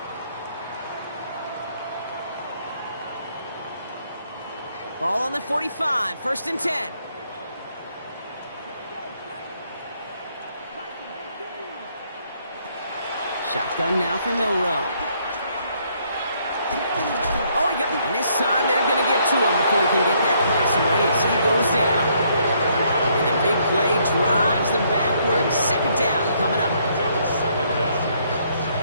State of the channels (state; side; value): inverted; both; correlation -0.69